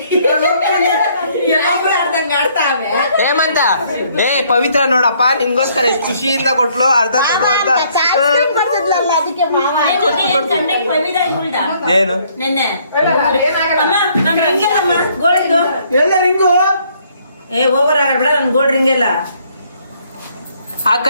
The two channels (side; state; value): both; inverted; correlation -0.65